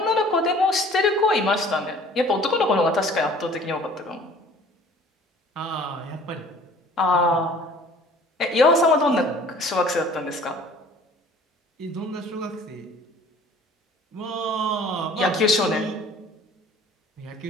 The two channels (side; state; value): both; normal; correlation 0.50